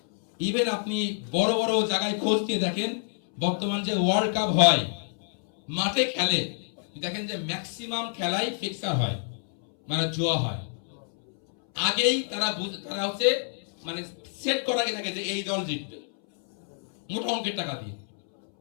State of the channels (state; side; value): silent; right; 60 dB below the other